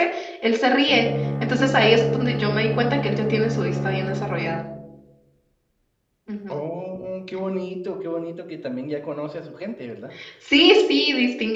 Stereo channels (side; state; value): both; identical; correlation 1.00